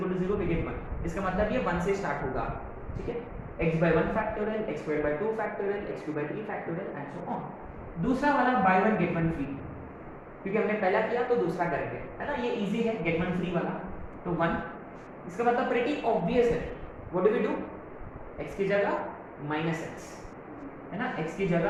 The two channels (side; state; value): both; identical; correlation 1.00